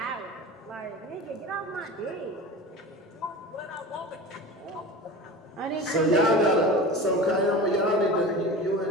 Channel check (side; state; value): both; normal; correlation 0.33